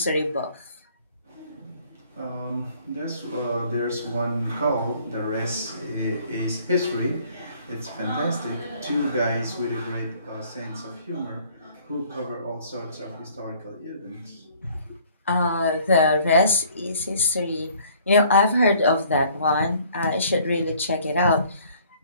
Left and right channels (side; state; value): both; inverted; correlation -0.58